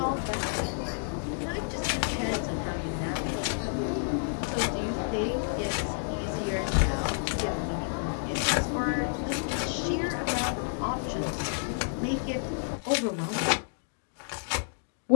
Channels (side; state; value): right; silent; digital silence